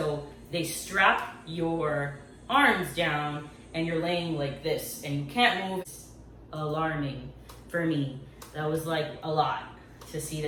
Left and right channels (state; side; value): identical; both; correlation 1.00